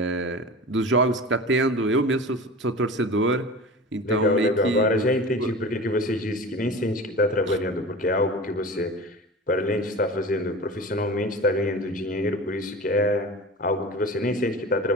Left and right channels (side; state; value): both; normal; correlation 0.34